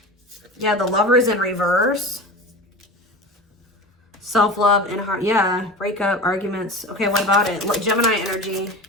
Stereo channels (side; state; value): both; normal; correlation 0.31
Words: Yeah, the Lovers in reverse. Self-love and heart. Yeah, breakup, arguments. Okay, what about it? Look, Gemini energy.